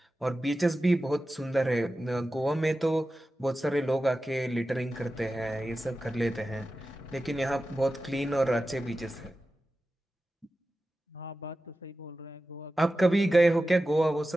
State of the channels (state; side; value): normal; both; correlation 0.94